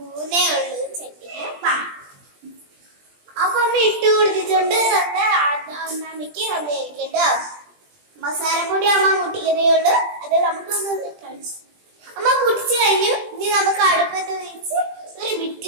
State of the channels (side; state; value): left; late; 20 ms